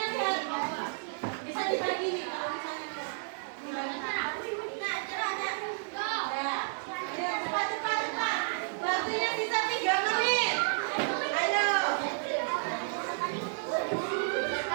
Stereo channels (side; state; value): left; silent; 57 dB below the other